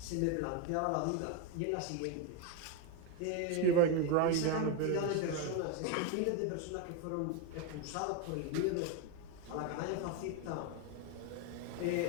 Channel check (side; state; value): both; different; correlation 0.02